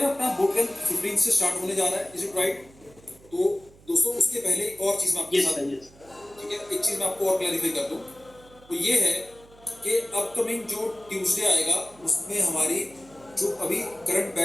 अपना बोट कैंप 15 से स्टार्ट होने जा रहा है, इज इट राइट? तो दोस्तों उसके पहले एक और चीज मैं आपके साथ, ठीक है, एक चीज मैं आपको और क्लैरिफाई कर दूं, तो ये है कि अपकमिंग जो ट्यूसडे आएगा उसमें हमारी जो अभी करंट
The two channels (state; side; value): noise; right; hum, 25 dB below the sound